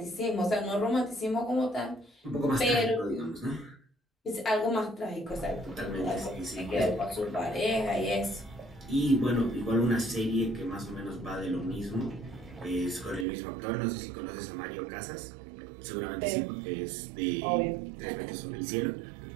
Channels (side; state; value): left; drops out; at 13.2 s